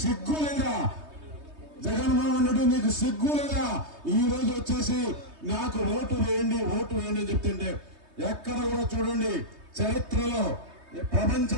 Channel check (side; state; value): left; late; 3.2 ms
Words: సిగ్గు లేదా? జగన్మోహన్ రెడ్డి నీకు సిగ్గు లేదా? ఈ రోజు వచ్చేసి నాకు ఓటు వేయండి, ఓటు వేయండి అని చెప్తుంటే ఎక్కడ కూడా చూడండి చరిత్రలో